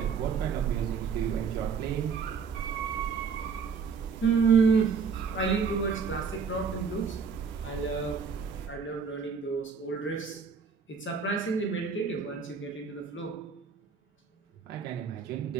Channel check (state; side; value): quieter; left; 5.8 dB